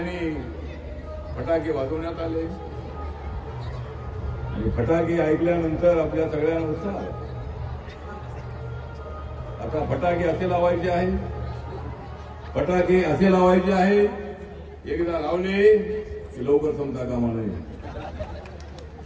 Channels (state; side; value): identical; both; correlation 1.00